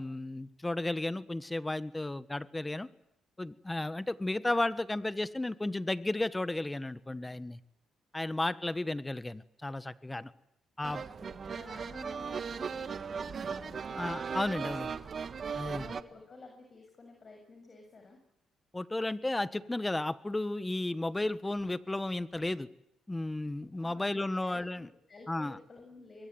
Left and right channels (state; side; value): normal; both; correlation 0.97